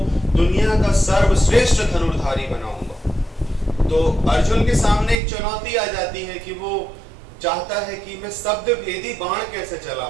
दुनिया का सर्वश्रेष्ठ धनुर्धारी बनाऊंगा, तो अर्जुन के सामने एक चुनौती आ जाती है कि वो चाहता है कि मैं शब्द भेदी बाण कैसे चला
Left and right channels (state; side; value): drops out; left; at 5.2 s